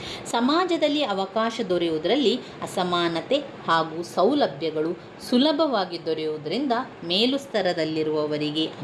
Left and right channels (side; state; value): both; identical; correlation 1.00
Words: ಸಮಾಜದಲ್ಲಿ ಅವಕಾಶ ದೊರೆಯುವುದರಲ್ಲಿ ಅಸಮಾನತೆ ಹಾಗೂ ಸೌಲಭ್ಯಗಳು ಸುಲಭವಾಗಿ ದೊರೆಯುವುದರಿಂದ ಮೇಲು ಸ್ತರದಲ್ಲಿರುವವರಿಗೆ